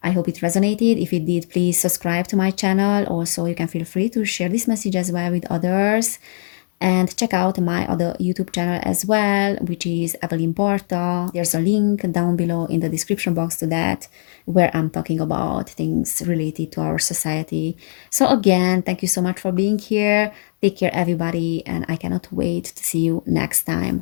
I hope it resonated. If it did, please subscribe to my channel. Also, you can feel free to share this message as well with others. And check out my other YouTube channel as well, which is Evelyn Barta. There's a link down below in the description box to that, where I'm talking about things related to our society. So again, thank you so much for being here. Take care, everybody, and I cannot wait to see you next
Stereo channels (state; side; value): silent; right; digital silence